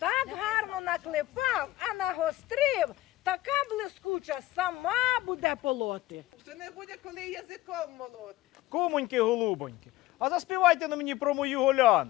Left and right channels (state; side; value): quieter; right; 16.6 dB